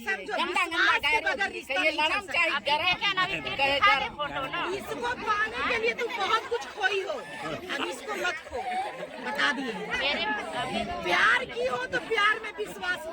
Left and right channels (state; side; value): identical; both; correlation 1.00